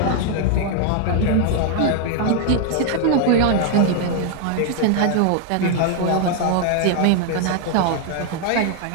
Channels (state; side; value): different; both; correlation 0.00